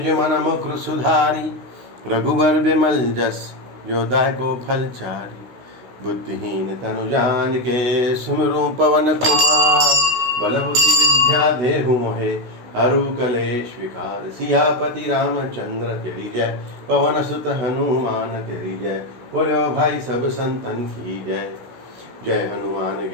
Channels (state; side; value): late; left; 16 ms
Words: मन मुकुर सुधारी। रघुबर बिमल जस जो दायको फल चारी। बुद्धिहीन तनु जान के सुमिरु पवन कुमार। बल बुद्धि विद्या देहु मोहे हरु कलेश विकार। सियापति रामचंद्र तेरी जय, पवन सुत हनुमान तेरी जय। बोलो भाई सब संतन की जय। जय हनुमान